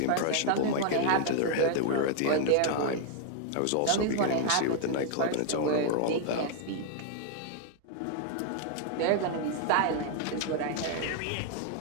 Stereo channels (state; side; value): different; both; correlation 0.00